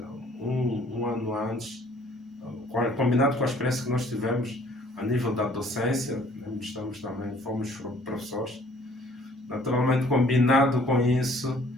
um ano antes, combinado com a experiência que nós tivemos a nível da docência, fomos professores, naturalmente combinado com isso,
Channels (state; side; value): normal; both; correlation 0.57